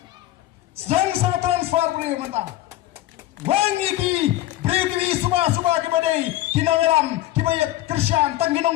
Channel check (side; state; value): right; quieter; 15.0 dB